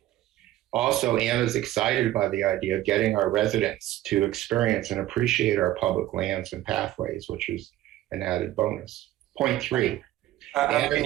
Also, Anna's excited by the idea of getting our residents to experience and appreciate our public lands and pathways, which is an added bonus. Point 3. How can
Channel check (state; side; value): quieter; left; 14.6 dB